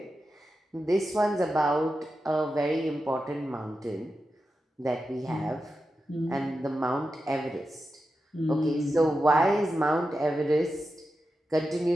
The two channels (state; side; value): normal; both; correlation 0.90